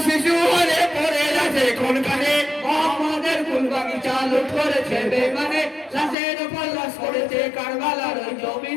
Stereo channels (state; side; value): drops out; right; at 6.2 s